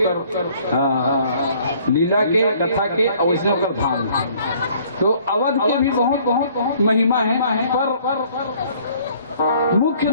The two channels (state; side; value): inverted; both; correlation -0.58